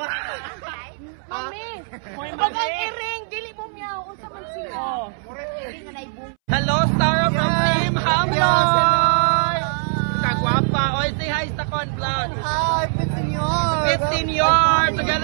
Mami! Pag ang iring, dili mo miyaw. Unsa man siya? Hello, Star from Team Hamloy! Kagwapa. Oy, say hi sa Con Vlog. Hi, 15 years. 15 years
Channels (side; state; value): left; silent; 65 dB below the other